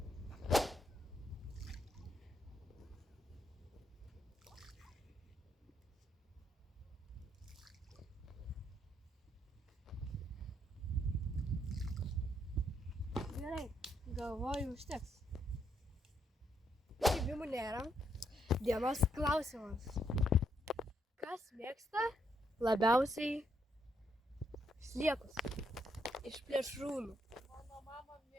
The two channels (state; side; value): normal; both; correlation 0.75